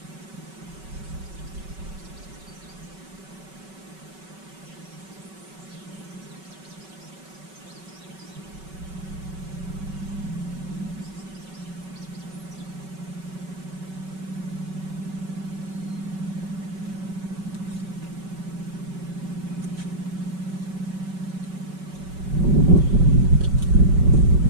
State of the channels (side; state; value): left; late; 5.3 ms